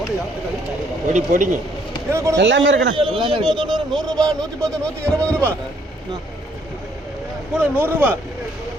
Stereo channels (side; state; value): both; normal; correlation 0.67